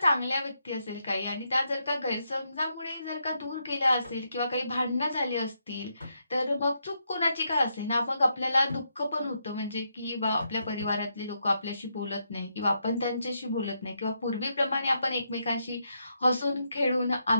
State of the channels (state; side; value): inverted; both; correlation -0.80